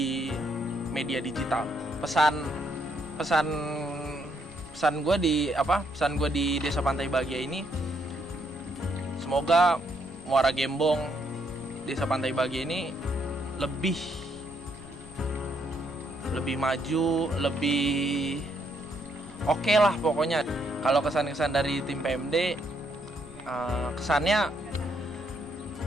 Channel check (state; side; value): noise; left; rumble, 19 dB below the sound